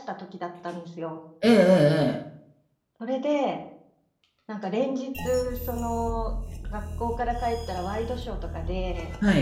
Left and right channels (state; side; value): identical; both; correlation 1.00